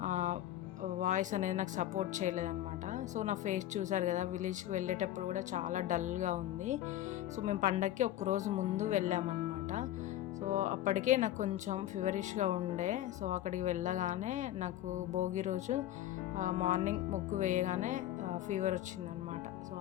వాయిస్ అనేది నాకు సపోర్ట్ చేయలేదన్నమాట. సో నా ఫేస్ చూసారు కదా, విలేజ్కి వెళ్ళేటప్పుడు కూడా చాలా డల్గా ఉంది. సో మేము పండగకి ఒక్కరోజు ముందు వెళ్ళామన్నమాట. సో అప్పటికే నాకు కొంచెం ఫీవరిష్గా ఉండే. సో అక్కడికి వెళ్ళగానే నాకు భోగి రోజు మార్నింగ్ ముగ్గు వేయగానే ఫీవర్ వచ్చిందనమాట. సో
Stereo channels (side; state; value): right; quieter; 13.1 dB